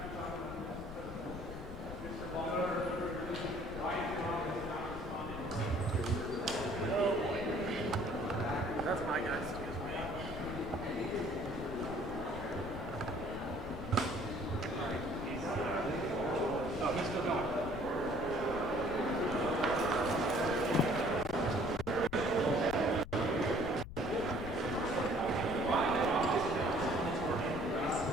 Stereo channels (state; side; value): noise; left; rumble, 11 dB below the sound